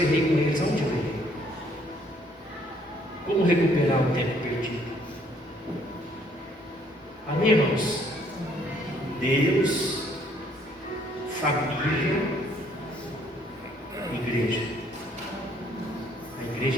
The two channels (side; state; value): both; normal; correlation 0.64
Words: errei com eles, aonde eu errei? Como recuperar o tempo perdido? Amém, irmãos? Deus, família, igreja. A